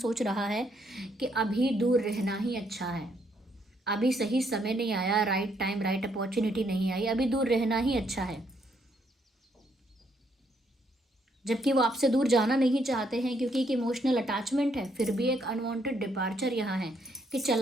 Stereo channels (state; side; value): normal; both; correlation 0.72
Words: रहा है कि अभी दूर रहना ही अच्छा है, अभी सही समय नहीं आया, राइट टाइम, राइट अपॉर्चुनिटी नहीं आई, अभी दूर रहना ही अच्छा है। जबकि वो आपसे दूर जाना नहीं चाहते हैं, क्योंकि एक इमोशनल अटैचमेंट है, फिर भी एक अनवांटेड डिपार्चर यहाँ है कि